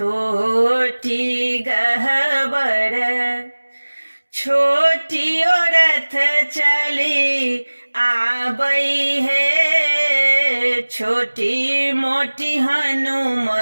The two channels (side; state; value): both; inverted; correlation -1.00